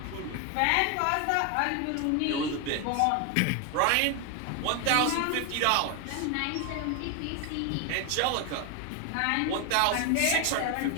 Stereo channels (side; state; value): both; different; correlation 0.01